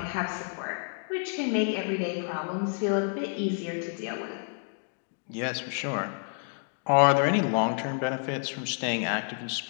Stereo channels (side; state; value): right; silent; 58 dB below the other